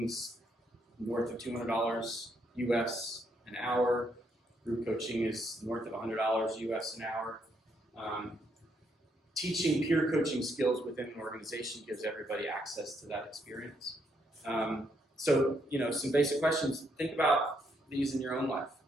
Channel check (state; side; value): normal; both; correlation 0.75